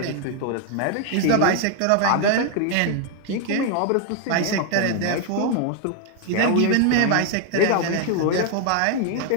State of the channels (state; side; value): different; both; correlation 0.01